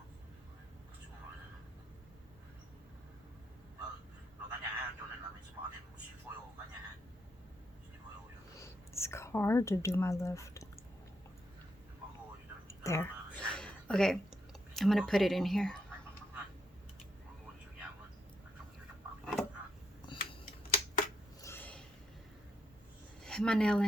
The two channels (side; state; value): both; normal; correlation 0.79